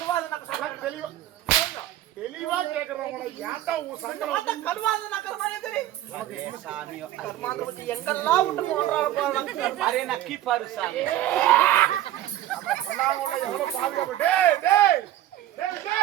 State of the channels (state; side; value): quieter; left; 13.4 dB